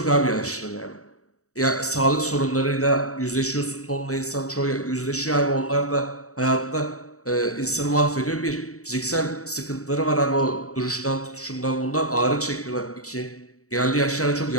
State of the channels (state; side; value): late; right; 0.65 ms